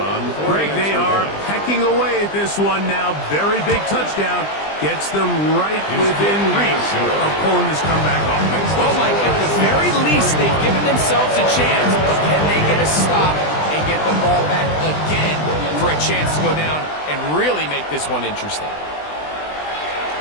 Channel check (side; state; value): right; late; 20 ms